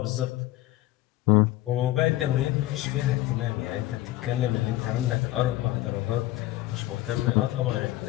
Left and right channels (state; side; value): quieter; right; 16.3 dB